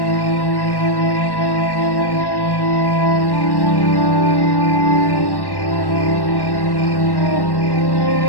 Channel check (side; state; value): right; late; 1.1 ms